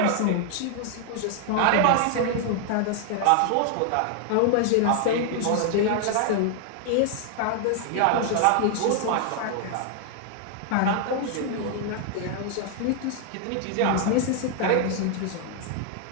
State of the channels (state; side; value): different; both; correlation 0.00